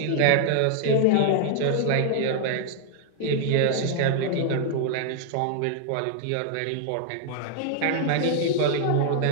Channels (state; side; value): different; both; correlation -0.01